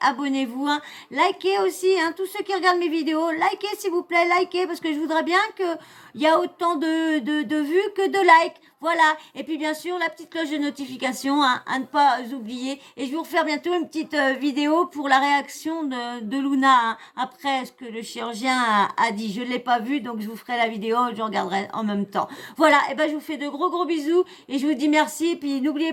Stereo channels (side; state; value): both; identical; correlation 1.00